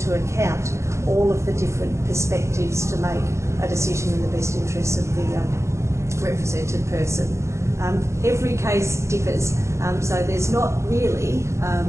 account all of the different perspectives to make a decision in the best interests of the represented person. Every case differs, so there's not really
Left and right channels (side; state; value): left; late; 0.14 ms